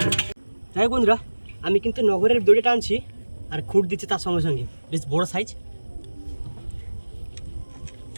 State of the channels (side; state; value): both; inverted; correlation -1.00